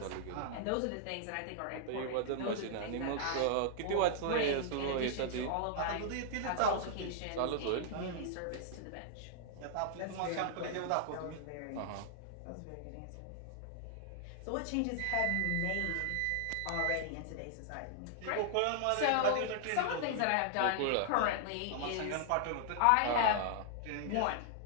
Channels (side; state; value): both; different; correlation -0.01